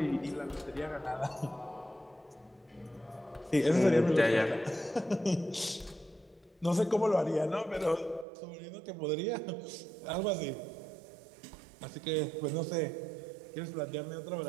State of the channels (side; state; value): left; drops out; at 8.2 s